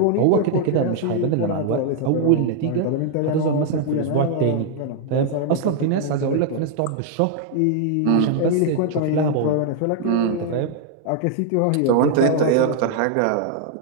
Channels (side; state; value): both; different; correlation 0.00